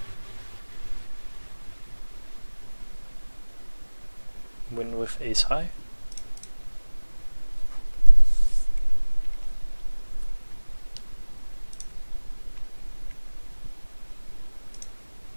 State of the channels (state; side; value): inverted; both; correlation -1.00